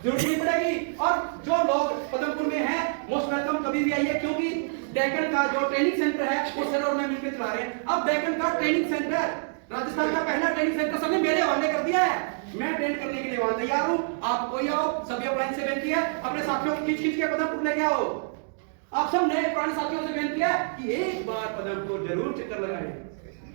जरूरत नहीं पड़ेगी। और जो लोग पदमपुर में हैं मोस्ट वेलकम, कभी भी आइए, क्योंकि डेक्कन का जो ट्रेनिंग सेंटर है वो सर और मैं मिलकर चला रहे हैं। अब डेक्कन का ट्रेनिंग सेंटर, राजस्थान का पहला ट्रेनिंग सेंटर सबने मेरे हवाले कर दिया है, मैं ट्रेन करने के लिए वहां तैयार हूं। आप कोई आओ, सभी अपलाइन से बेनती है अपने साथियों को खींच के पदमपुर लेके आओ। आप सब नए पुराने साथियों से बेनती है कि एक बार पदमपुर जरूर चक्कर लगाएं।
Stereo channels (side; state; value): left; silent; digital silence